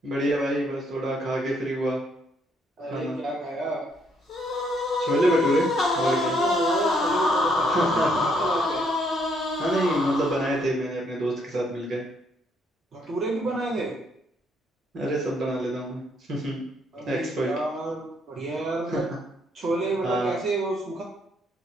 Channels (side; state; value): both; normal; correlation 0.70